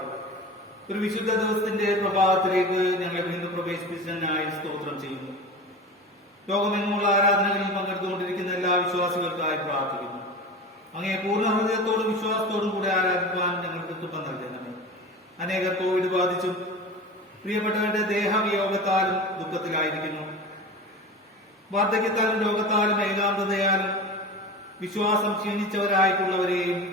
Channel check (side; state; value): both; normal; correlation 0.31